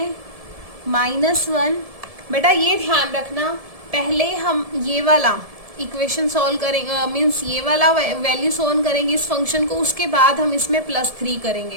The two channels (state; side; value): late; left; 1.7 ms